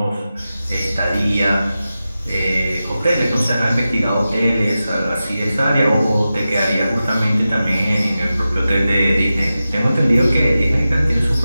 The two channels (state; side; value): inverted; both; correlation -0.93